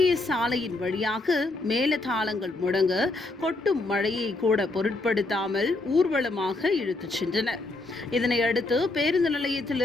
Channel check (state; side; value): quieter; right; 3.0 dB